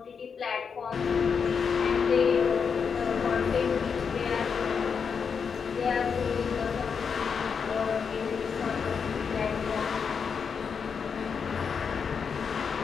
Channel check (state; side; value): quieter; right; 6.2 dB